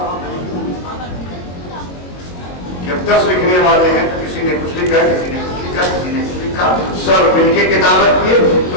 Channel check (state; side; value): late; right; 22 ms